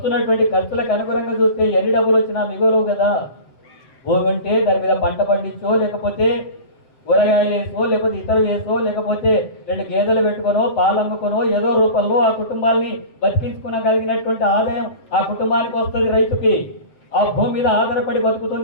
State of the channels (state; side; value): late; right; 7.7 ms